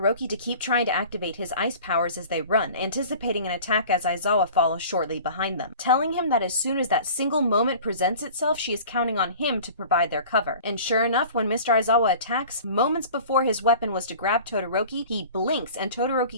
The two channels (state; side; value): inverted; both; correlation -0.42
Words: to keep trying to activate his ice powers as they run, anticipating an attack as Aizawa follows shortly behind them, telling him that as soon as that single moment presents itself, she is counting on him to provide their cover. And sure enough, when Mr. Aizawa attacks, moments before his weapon was to grab Todoroki, he blinks and